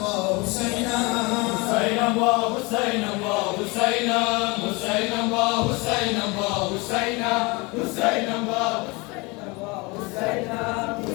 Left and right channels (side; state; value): right; quieter; 26.4 dB